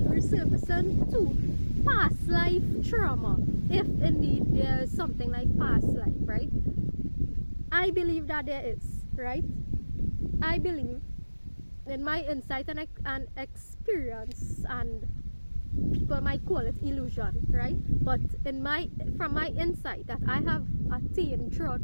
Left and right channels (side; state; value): both; inverted; correlation -1.00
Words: two, past life trauma, if indeed there is something like past life, right? I believe that there is, right? I believe, in my insight and experience, and people might call it illusion, right? But from my insight that I have attained throughout